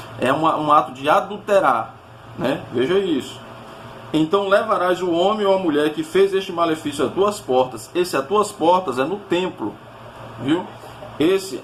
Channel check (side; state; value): both; identical; correlation 1.00